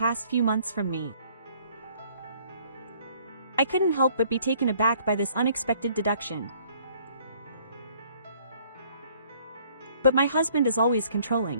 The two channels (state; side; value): inverted; both; correlation -0.60